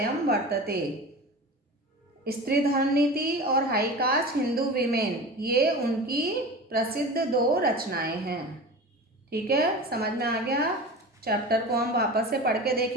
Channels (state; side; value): normal; both; correlation 0.33